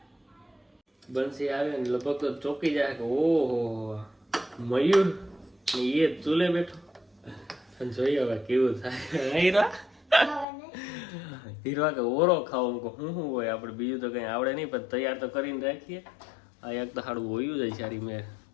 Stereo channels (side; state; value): right; drops out; at 10.5 s